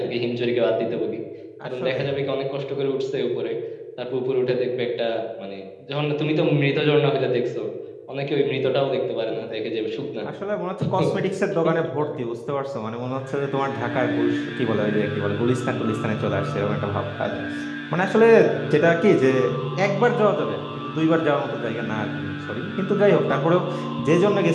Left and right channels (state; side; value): identical; both; correlation 1.00